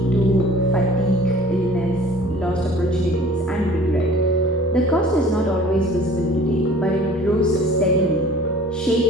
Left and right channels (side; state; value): both; normal; correlation 0.48